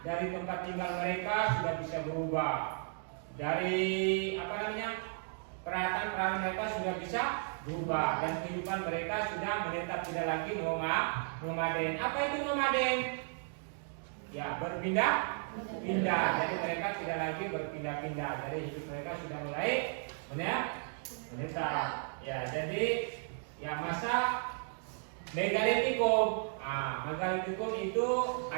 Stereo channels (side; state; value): left; silent; 55 dB below the other